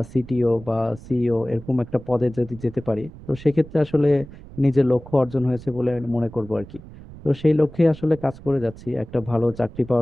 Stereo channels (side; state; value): right; noise; rumble, 17 dB below the sound